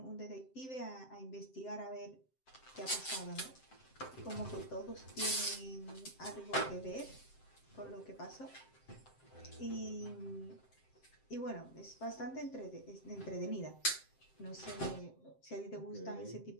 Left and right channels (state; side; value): late; right; 7.7 ms